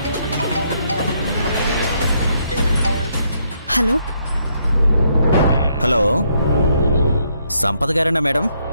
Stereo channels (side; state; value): both; inverted; correlation -0.74